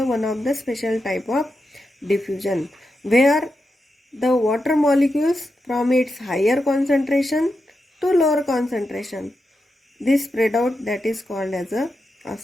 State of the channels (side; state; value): both; normal; correlation 0.87